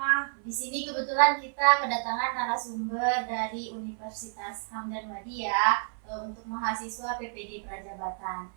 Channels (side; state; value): left; silent; 57 dB below the other